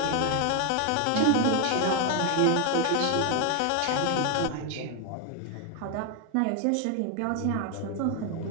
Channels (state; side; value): different; both; correlation 0.01